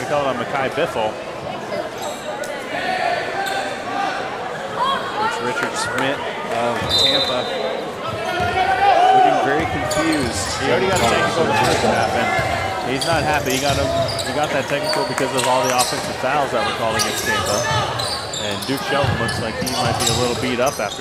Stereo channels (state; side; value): identical; both; correlation 1.00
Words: call it on Mekhi Biffle. Coach Richard Schmidt of Tampa looking very confused. He already got a technical in the first half, and he's not happy. He got that technical because of all the offensive fouls that were called against Tampa. And Duke Shelton looks like he might be a little beat up